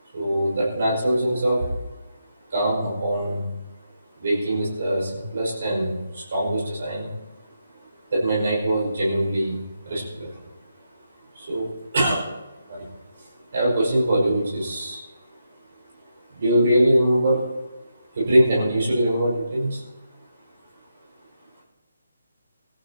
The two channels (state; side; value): inverted; both; correlation -0.85